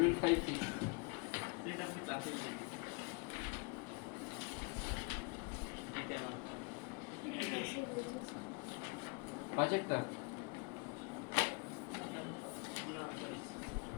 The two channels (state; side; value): quieter; right; 31.5 dB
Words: 5-6 সেটা আমি ক্লাসে 5-এরটা না সরি